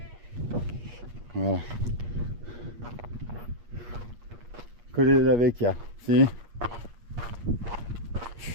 Voilà. Colle della Vecchia, si?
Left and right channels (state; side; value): late; left; 8.4 ms